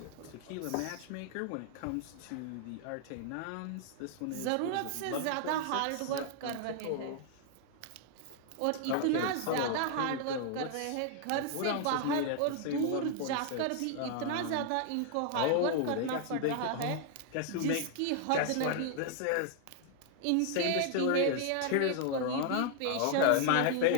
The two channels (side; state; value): both; different; correlation 0.00